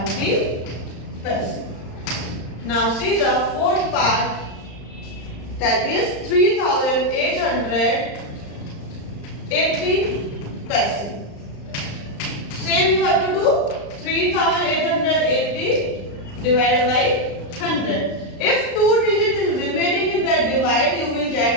paise. Now see the fourth part, that is 3880 paise. Same you have to do 3880 divided by 100. If 2 digits is remaining in the divide, you will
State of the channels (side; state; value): right; late; 35 ms